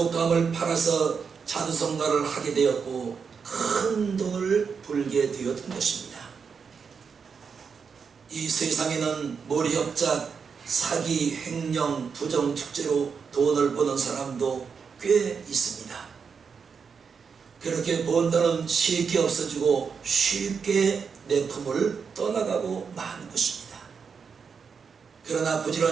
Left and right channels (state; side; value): quieter; left; 6.0 dB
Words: 팔아서 자주성가를 하게 되었고 큰 돈을 벌게 되었던 것입니다. 이 세상에는 몰이협작, 사기, 횡령, 부정, 축제로 돈을 버는 사람도 꽤 있습니다. 그렇게 번 돈은 쉽게 없어지고 쉽게 내 품을 떠나가고 마는 것입니다. 그러나